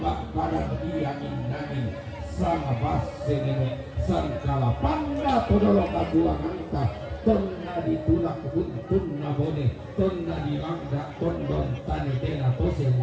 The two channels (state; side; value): identical; both; correlation 1.00